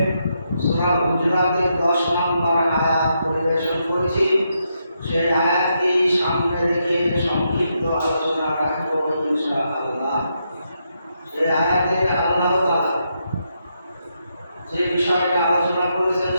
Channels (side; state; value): both; inverted; correlation -0.81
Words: সূরা হুজুরাতের 10 নম্বর আয়াত পরিবেশন করেছি। সেই আয়াতটি সামনে রেখে সংক্ষিপ্ত আলোচনা রাখবো ইনশাআল্লাহ। সেই আয়াতে আল্লাহ তাআলা যে বিষয়টা আলোচনা করেছেন